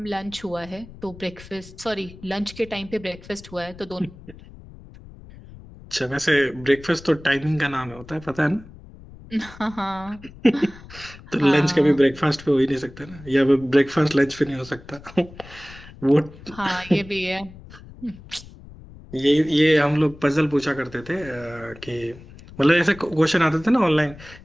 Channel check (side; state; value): left; noise; rumble, 19 dB below the sound